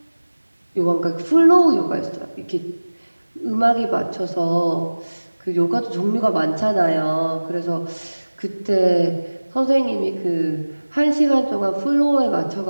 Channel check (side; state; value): both; inverted; correlation -1.00